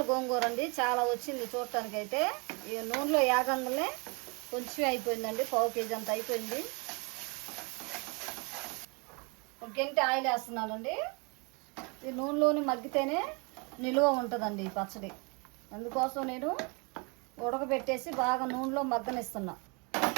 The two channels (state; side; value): quieter; left; 31.8 dB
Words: గోంగూర అండి. చాలా వచ్చింది చూడటానికి. అయితే ఈ నూనెలో యాగంగానే కొంచెం అయిపోయిందండి, 1/2 కేజీ అంత అయిపోయింది. ఒక గంట ఆయిల్ వేస్తున్నానండి. ఈ నూనెలోని మగ్గితేనే నిలువ ఉంటుందండి ఈ పచ్చడి. అందుకోసం నేను ఉడకబెట్టేసి బాగా నూనెలో మగ్గనిస్తున్నా.